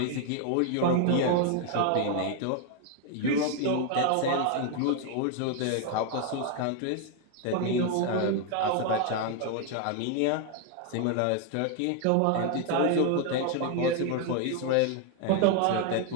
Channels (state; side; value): different; both; correlation 0.01